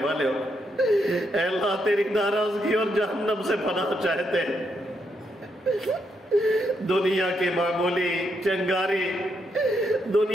والے ہو، اے اللہ تیری ناراضگی اور جہنم سے پناہ چاہتے ہیں، دنیا کی معمولی چنگاری،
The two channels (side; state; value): both; normal; correlation 0.79